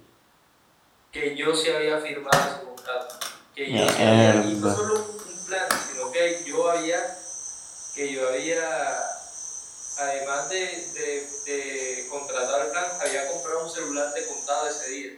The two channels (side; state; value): both; identical; correlation 1.00